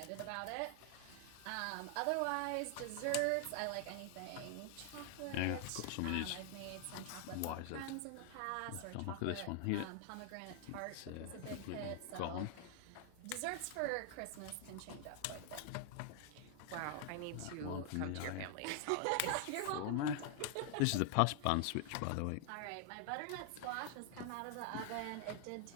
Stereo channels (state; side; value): different; both; correlation 0.00